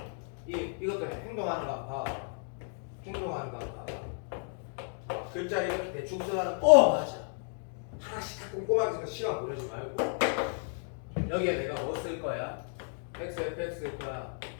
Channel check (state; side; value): silent; right; 56 dB below the other